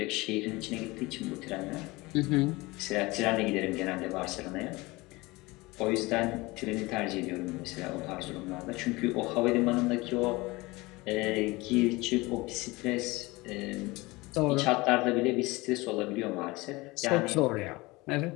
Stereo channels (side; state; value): right; quieter; 22.4 dB